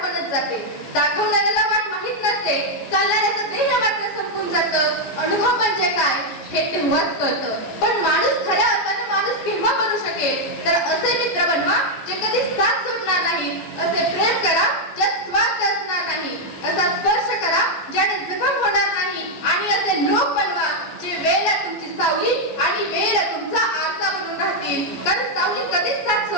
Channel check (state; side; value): late; right; 14 ms